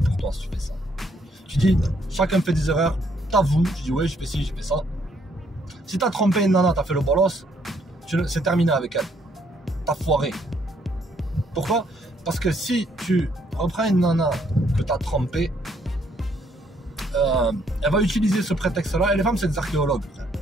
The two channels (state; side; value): normal; both; correlation 0.69